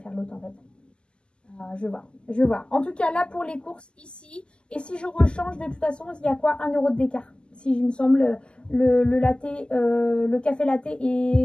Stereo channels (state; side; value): late; right; 0.049 ms